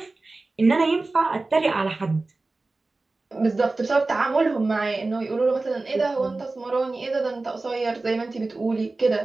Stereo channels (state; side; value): quieter; left; 3.4 dB